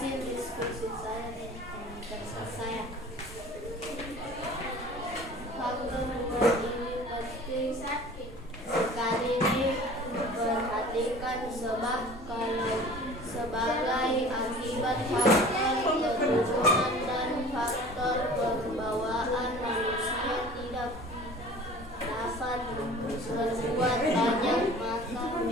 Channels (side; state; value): both; normal; correlation 0.44